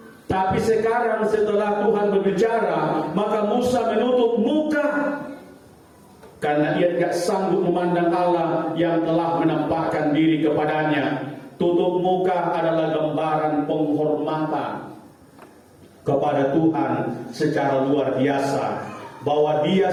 tapi sekarang setelah Tuhan berbicara, maka Musa menutup muka karena ia tidak sanggup memandang Allah yang telah menampakkan diri kepadanya. Tutup muka adalah gambaran penghormatan kepada Tuhan secara luar biasa, bahwa dia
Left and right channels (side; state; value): both; identical; correlation 1.00